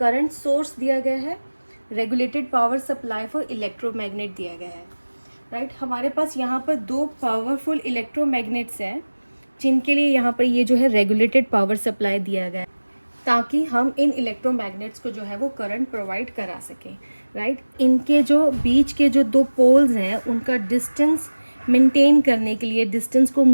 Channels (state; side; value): inverted; both; correlation -1.00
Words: सोर्स दिया गया है, regulated power supply for electromagnet दिया गया है। राइट, हमारे पास यहाँ पर दो पावरफुल इलेक्ट्रोमैग्नेट्स हैं जिनके लिए यहाँ पर ये जो है रेगुलेटेड पावर सप्लाई दिया गया है ताकि हम इन इलेक्ट्रोमैग्नेट्स को जो है वो करंट प्रोवाइड करा सकें। राइट, इनके जो बीच के जो दो पोल्स हैं उनका डिस्टेंस मेंटेन करने के लिए, डिस्टेंस को